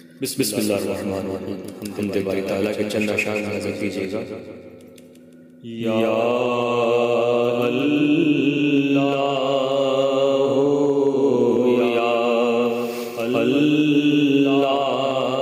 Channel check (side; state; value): both; identical; correlation 1.00